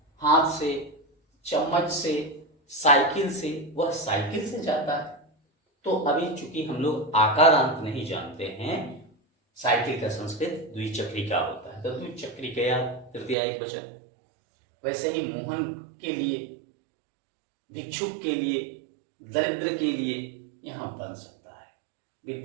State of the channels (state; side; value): drops out; left; at 13.4 s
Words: हाथ से, चम्मच से, साइकिल से। वह साइकिल से जाता है। तो अभी चूंकि हम लोग आकारांत नहीं जानते हैं, साइकिल का संस्कृत द्विचक्रिका होता है तो द्विचक्रिकया तृतीया एक वचन। वैसे ही मोहन के लिए, भिक्षुक के लिए, दरिद्र के लिए यहाँ बन सकता है।